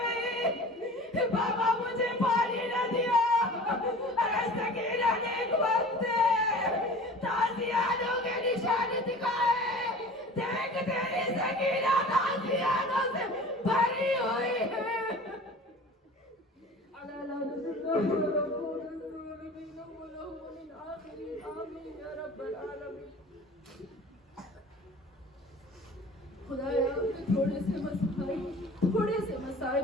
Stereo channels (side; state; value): both; normal; correlation 0.41